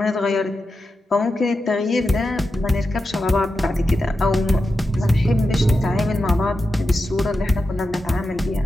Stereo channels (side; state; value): both; normal; correlation 0.90